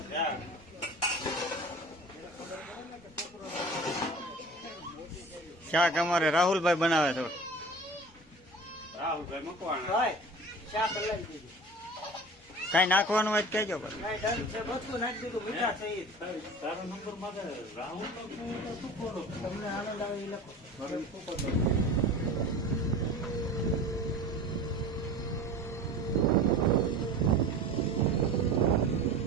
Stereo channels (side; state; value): both; normal; correlation 0.39